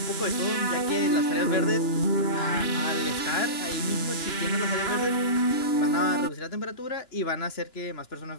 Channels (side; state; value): right; late; 2.9 ms